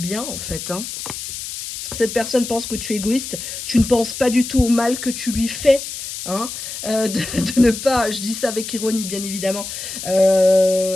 en fait, hein. Cette personne pense que tu es égoïste, tu ne penses pas du tout au mal que tu lui fais. Hein, de ne pas, je dis ça avec ironie bien évidemment,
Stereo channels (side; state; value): left; noise; hiss, 8 dB below the sound